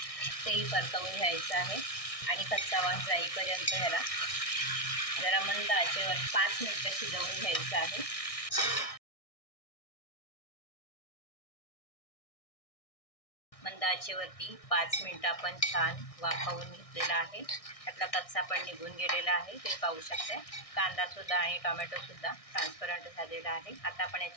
तेही परतवून घ्यायचं आहे आणि कच्चा वास जाईपर्यंत ह्याला जरा मंद आचेवर 5 मिनिटं शिजवून घ्यायचं आहे। मंद आचेवरती 5 मिनिटं आपण छान वाफवून घेतलेला आहे। त्यातला कच्चा पण निघून गेलेला आहे, ते पाहू शकता। कांदा सुद्धा आणि टोमॅटो सुद्धा ट्रान्सपरंट झालेला आहे। आता आपण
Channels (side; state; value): right; late; 1.6 ms